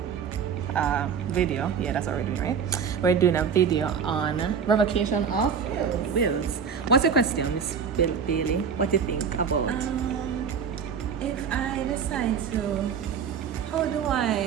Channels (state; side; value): quieter; left; 6.7 dB